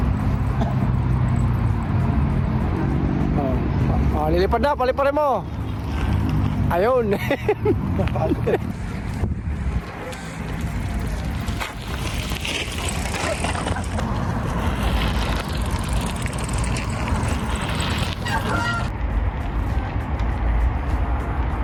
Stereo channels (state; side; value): identical; both; correlation 1.00